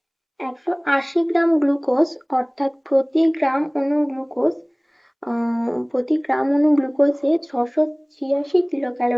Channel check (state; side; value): identical; both; correlation 1.00